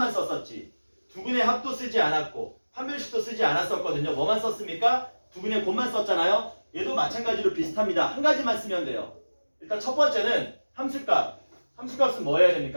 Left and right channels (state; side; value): inverted; both; correlation -1.00